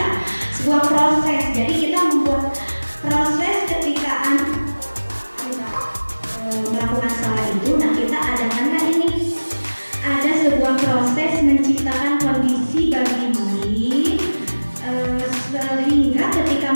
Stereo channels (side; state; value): both; inverted; correlation -1.00